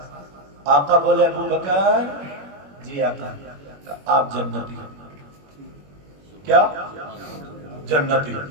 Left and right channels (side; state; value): left; late; 21 ms